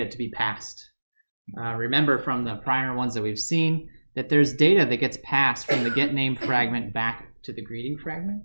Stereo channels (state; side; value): inverted; both; correlation -1.00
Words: to be passed. Remember from the prior ones that we've seen that there's data that gets passed from the GetName fragment back to the greeting fragment.